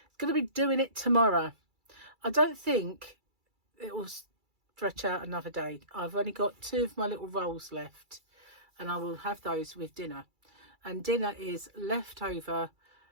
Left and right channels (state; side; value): late; left; 2.3 ms